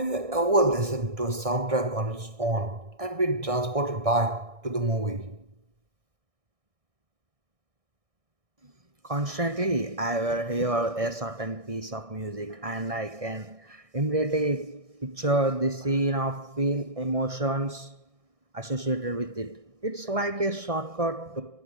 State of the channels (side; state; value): left; late; 1.6 ms